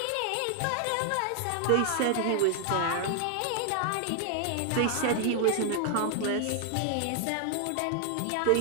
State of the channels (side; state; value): both; different; correlation 0.00